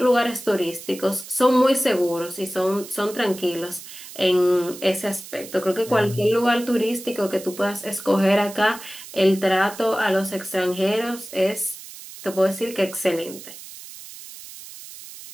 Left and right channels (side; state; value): right; noise; hiss, 15 dB below the sound